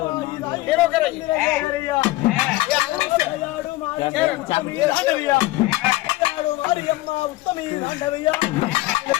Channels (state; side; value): quieter; right; 18.6 dB